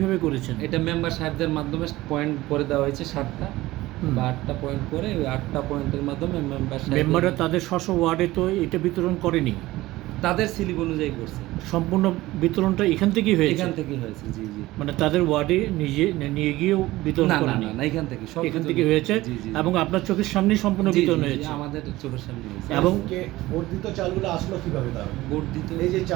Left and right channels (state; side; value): quieter; left; 17.9 dB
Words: করেছেন? এটা মেম্বার সাহেবদের মাধ্যমে পয়েন্ট করে দেওয়া হয়েছে 7টা বা 8টা পয়েন্ট করে, ওই 8টা পয়েন্টের মাধ্যমে মেম্বাররা তাদের স্ব ওয়ার্ডে তো এটা বিতরণ করেনি, তাদের স্লিপ অনুযায়ী করছে। সম্পূর্ণ বিতরণটা এখান থেকেই হয়েছে? এখান থেকেই হয়েছে, জি জি। মানে তাদের ওয়ার্ডে নিয়ে গিয়েও বিতরণ করেনি? না, এখান থেকে সব এখান থেকে হয়েছে এবং আপনার চোখের সামনেই সম্পূর্ণ বিতরণ হয়েছে? আমাদের চোখের সামনে হয়েছে। এবং বর্ধিত চালগুলো আসলো কিভাবে? তাহলে বর্ধিত এই যে